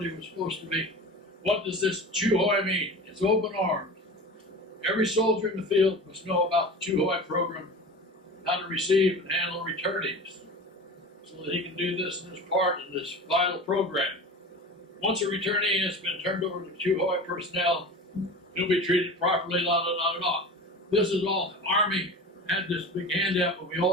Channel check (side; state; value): both; normal; correlation 0.33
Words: was supposed to be. What does this Chu Hoi mean? It's open arms. Every soldier in the field must know about the Chu Hoi program, how to receive and handle returnees, so that he can do this in his part in this vital program. Once a returnee has been turned over to Chu Hoi personnel, he'll be treated properly, la la la la. This is all. The Army had this big handout, but we